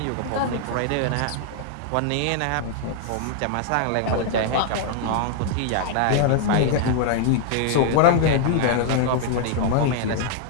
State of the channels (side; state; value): both; different; correlation -0.01